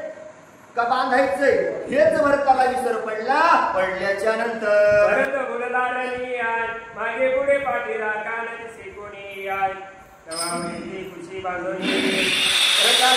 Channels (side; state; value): both; identical; correlation 1.00